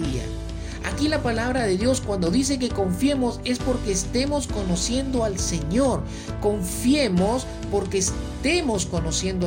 Aquí la palabra de Dios cuando dice que confiemos es porque estemos conociendo al Señor. Confiemos porque estemos conociendo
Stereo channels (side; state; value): both; identical; correlation 1.00